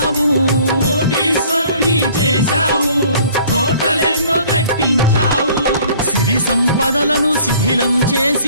కోటీశ్వరుని చేశావు, కోటలెన్నో కట్టించావు. సిరి సంపదలను శిథిలం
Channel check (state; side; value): inverted; both; correlation -0.54